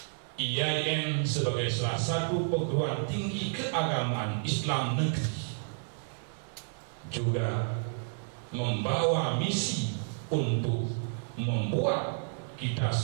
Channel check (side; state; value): left; silent; 57 dB below the other